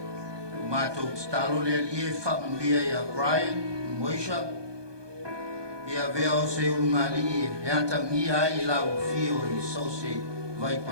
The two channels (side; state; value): left; late; 1.2 ms